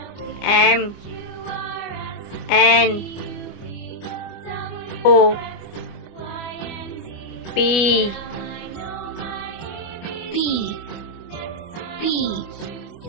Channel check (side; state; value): right; late; 25 ms